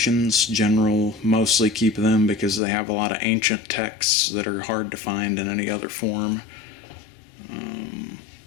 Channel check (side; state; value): right; drops out; at 2.6 s